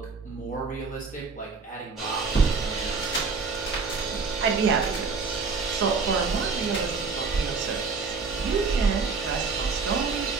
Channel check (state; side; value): quieter; left; 4.7 dB